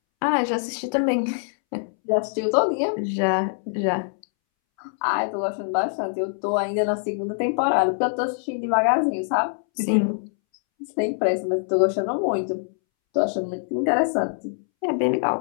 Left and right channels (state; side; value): silent; right; 63 dB below the other